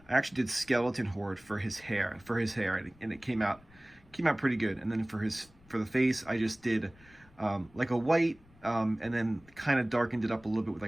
I actually did skeleton horde for his hair, and it came out pretty good. And then for the face, I just did like a white, and then kind of darkened it up a little bit with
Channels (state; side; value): noise; left; rumble, 27 dB below the sound